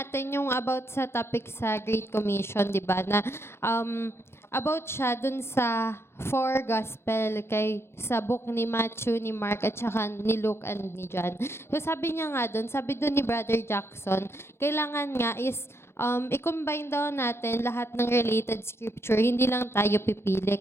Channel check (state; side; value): late; right; 0.12 ms